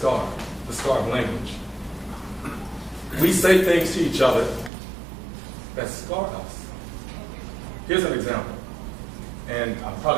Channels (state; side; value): drops out; left; at 4.7 s